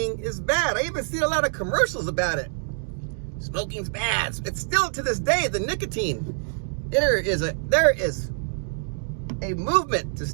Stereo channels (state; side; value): silent; left; digital silence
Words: is bad. I even see a lot of commercials about it. Smoking's bad. It's still to this day, the nicotine. There is a movement to